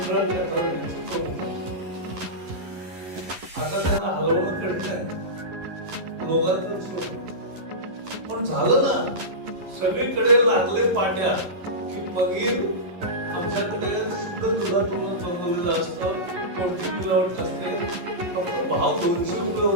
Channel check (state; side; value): late; left; 11 ms